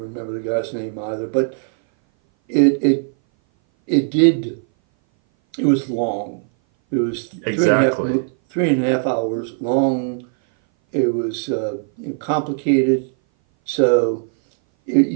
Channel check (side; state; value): left; silent; 59 dB below the other